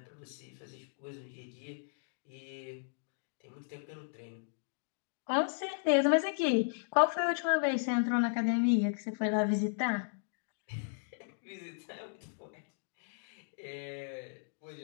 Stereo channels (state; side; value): silent; right; digital silence